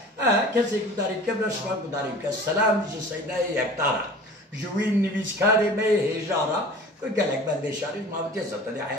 کسی که داری که برشما داری که سلام جی سیده یکتارا جوین نویسکاری می هجارا که گلک بنده شاری ما بودی زبطلی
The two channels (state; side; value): normal; both; correlation 0.42